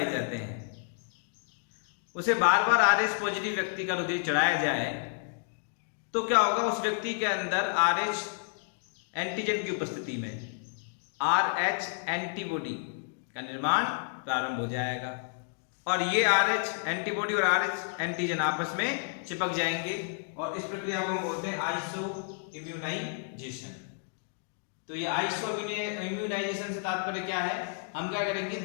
जाते हैं, उसे बार बार आर एच पॉजिटिव व्यक्ति का रुधिर चढ़ाया जाए तो क्या होगा? उस व्यक्ति के अंदर आर एच एंटीजन की उपस्थिति में आर एच एंटीबॉडी का निर्माण प्रारंभ हो जाएगा, और ये आर एच एंटीबॉडी और आर एच एंटीजन आपस में चिपक जाएंगे, और इस प्रक्रिया को हम बोलते हैं आइसो इम्यूनाइजेशन। तो ये आइसो इम्यूनाइजेशन से तात्पर्य क्या है? हम क्या करेंगे,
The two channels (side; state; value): right; silent; digital silence